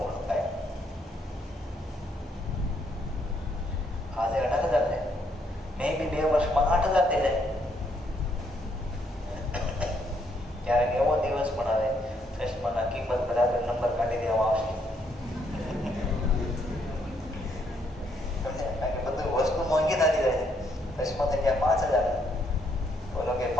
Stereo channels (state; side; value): normal; both; correlation 0.72